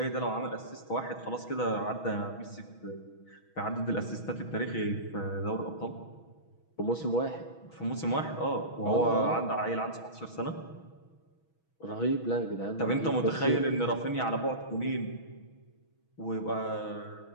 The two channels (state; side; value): late; right; 6.2 ms